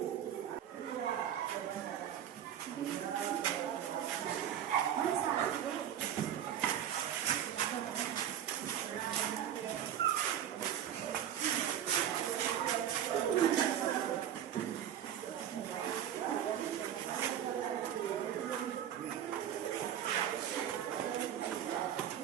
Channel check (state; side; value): quieter; left; 10.1 dB